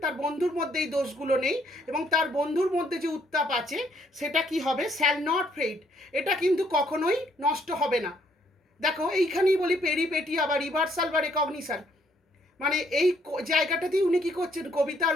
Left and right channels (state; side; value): normal; both; correlation 0.68